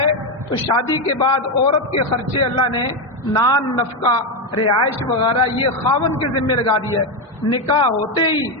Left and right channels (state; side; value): normal; both; correlation 0.09